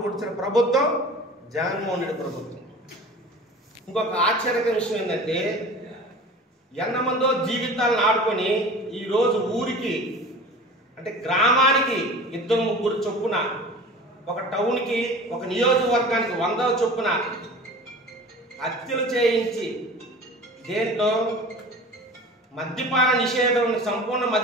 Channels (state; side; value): normal; both; correlation 0.39